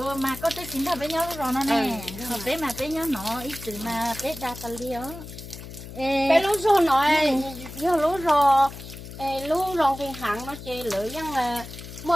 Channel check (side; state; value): left; noise; hum, 13 dB below the sound